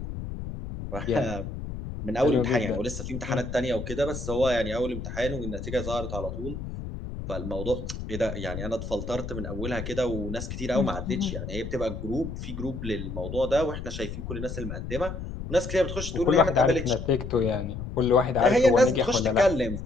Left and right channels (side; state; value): left; noise; rumble, 7 dB below the sound